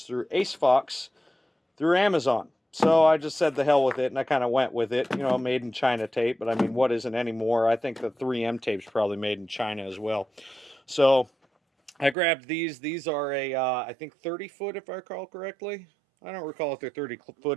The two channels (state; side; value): drops out; left; at 12.2 s